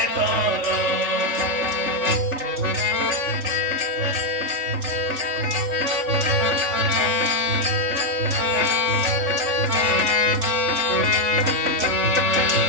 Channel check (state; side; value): late; left; 3.6 ms